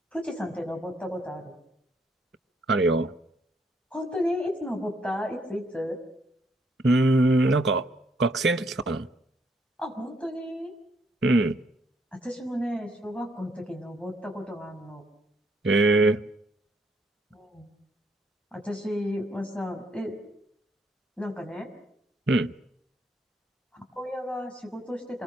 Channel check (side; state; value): both; normal; correlation 0.71